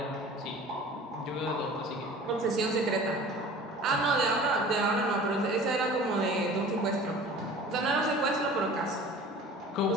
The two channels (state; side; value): normal; both; correlation 0.43